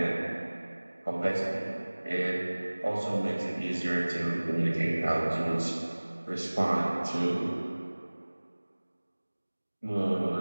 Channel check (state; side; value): inverted; both; correlation -1.00